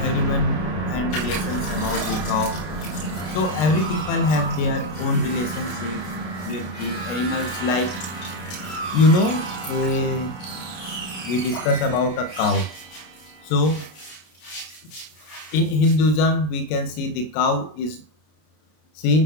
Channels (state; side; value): late; right; 32 ms